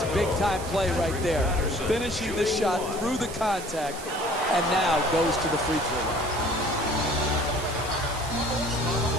a big-time play right there. Finishing the shot through the contact and now goes to the free throw line.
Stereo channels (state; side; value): noise; right; hiss, 13 dB below the sound